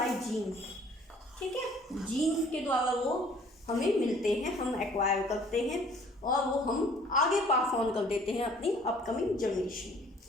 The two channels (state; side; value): normal; both; correlation 0.55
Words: जीन्स। ठीक है, जीन्स के द्वारा वो हमें मिलते हैं, हम एक्वायर करते हैं, और वो हम आगे पास ऑन कर देते हैं अपनी अपकमिंग